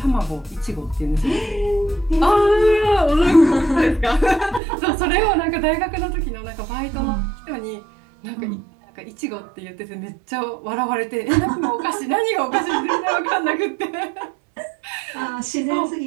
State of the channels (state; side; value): drops out; left; at 4.6 s